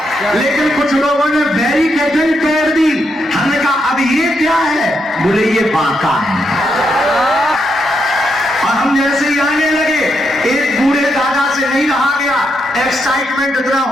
लेकिन कुछ लोगों ने बैरिकेडिंग कर दी। हमने कहा अब ये क्या है? बोले ये बांका है। और हम जैसे ही आने लगे, एक बूढ़े दादा से नहीं रहा गया, एक्साइटमेंट इतना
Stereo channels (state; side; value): normal; both; correlation 0.80